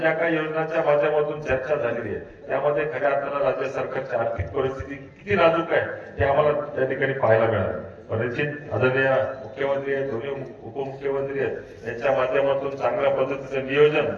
काही योजनांच्या माध्यमातून चर्चा झालेली आहे त्यामध्ये खऱ्या अर्थानं राज्य सरकारची आर्थिक परिस्थिती किती नाजूक आहे हे आम्हाला त्या ठिकाणी पाहायला मिळालं. निश्चित आदरणीय मुख्यमंत्री आहेत, दोन्ही उपमुख्यमंत्री आहेत, यांच्या माध्यमातून चांगल्या पद्धतीचं नियोजन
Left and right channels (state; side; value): identical; both; correlation 1.00